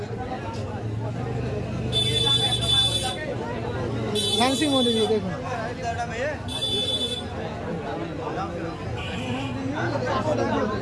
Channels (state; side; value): identical; both; correlation 1.00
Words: ফ্যান্সির মধ্যে দিয়ে দেখুন